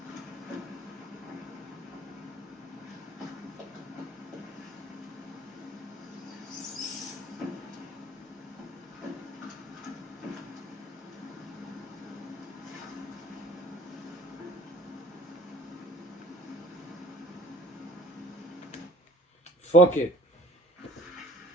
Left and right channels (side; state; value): both; normal; correlation 0.50